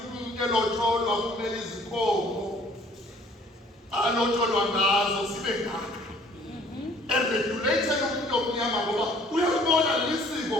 umuntu elotsholwa kumele izinkomo alotsholwa ngazo sibe ngaka. Eregulated umuntu omnyama ngoba uyabona lisiko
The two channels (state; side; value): normal; both; correlation 0.56